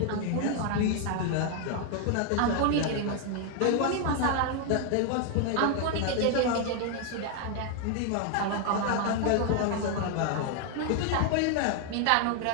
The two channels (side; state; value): both; different; correlation 0.00